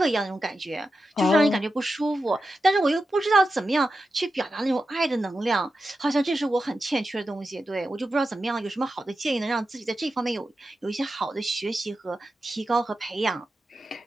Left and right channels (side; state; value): both; normal; correlation 0.90